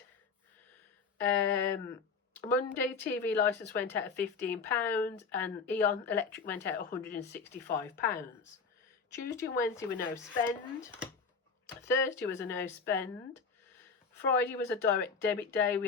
Monday, TV licence went out at £15 and Eon Electric went out at £165. Tuesday and Wednesday were no spend. Thursday was a no spend. Friday was a direct debit day. We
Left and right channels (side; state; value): right; quieter; 5.1 dB